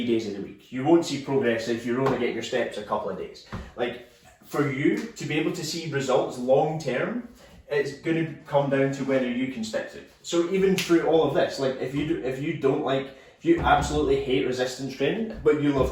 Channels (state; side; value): identical; both; correlation 1.00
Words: days of the week. You won't see progress if you're only getting your steps a couple of days. Like, for you to be able to see results long term, it's going to come down to whether you can stick to it. So even through all of this, like, if you absolutely hate resistance training, but you love